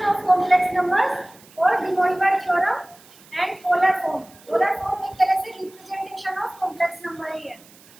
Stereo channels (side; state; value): right; noise; hiss, 25 dB below the sound